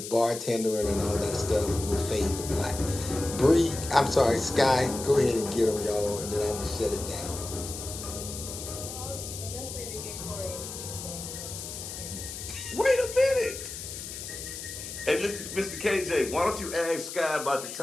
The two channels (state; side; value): noise; left; hiss, 9 dB below the sound